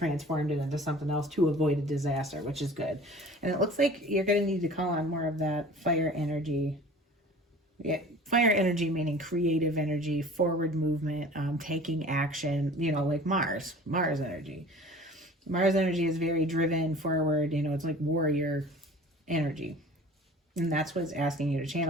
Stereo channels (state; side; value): normal; both; correlation 0.44